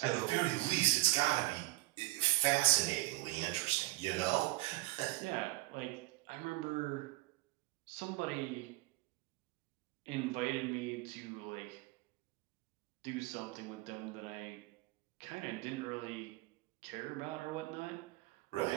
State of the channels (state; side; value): quieter; left; 19.7 dB